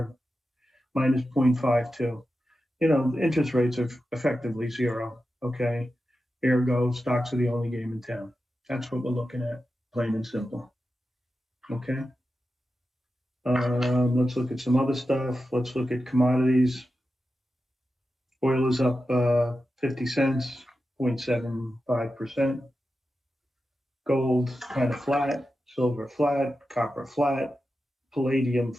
minus 0.52. Interest rates are effectively zero, okay? Ergo, stocks are the only game in town. That's what we're looking at, plain and simple, okay? Let's look at some other stuff. Let's look at commodities. Oil is up 50 cents, 0.75%. Gold kind of flat, silver flat, copper flat, palladium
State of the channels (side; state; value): both; normal; correlation 0.91